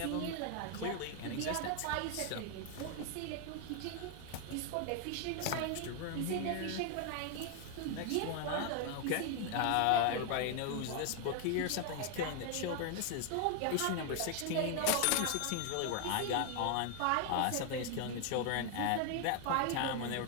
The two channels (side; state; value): both; different; correlation 0.00